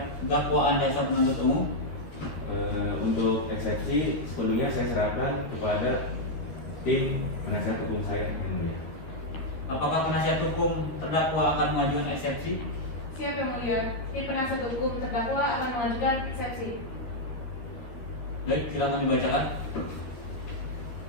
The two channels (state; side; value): late; right; 13 ms